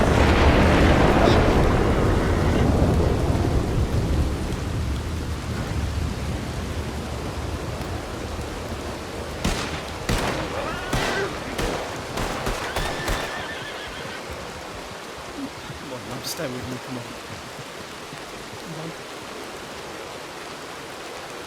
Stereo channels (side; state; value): both; identical; correlation 1.00